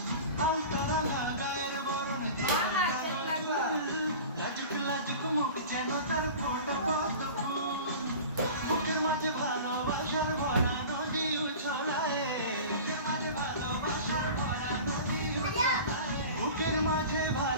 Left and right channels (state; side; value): inverted; both; correlation -0.37